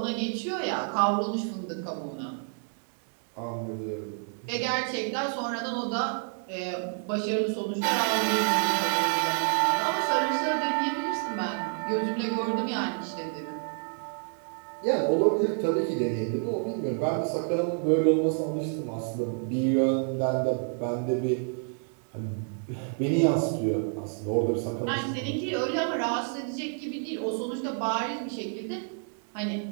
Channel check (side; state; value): left; silent; 57 dB below the other